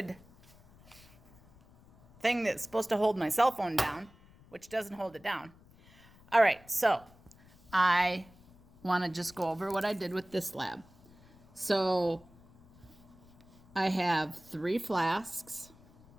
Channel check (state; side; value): noise; left; rumble, 26 dB below the sound